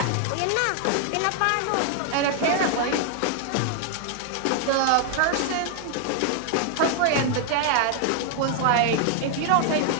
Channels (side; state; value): both; different; correlation 0.00